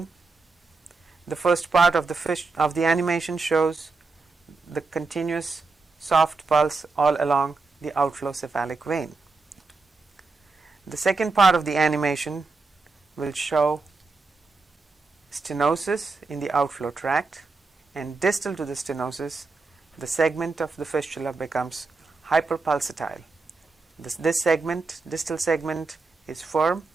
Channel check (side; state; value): left; quieter; 3.9 dB